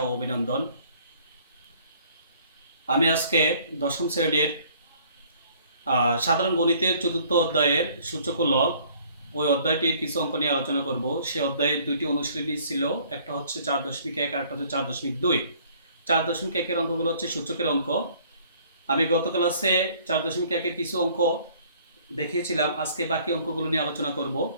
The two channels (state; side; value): inverted; both; correlation -0.58